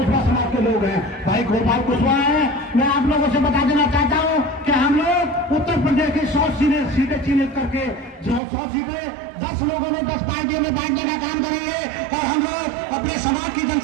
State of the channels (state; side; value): drops out; left; at 8.4 s